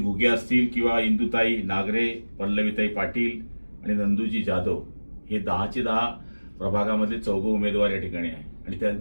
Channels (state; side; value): inverted; both; correlation -1.00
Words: असतील किंवा इंदुताई नागरे, पल्लवीताई पाटील आणि नंदूजी जाधव हे 10चे 10 प्रभागामध्ये 4 उमेदवार या ठिकाणी आहे आणि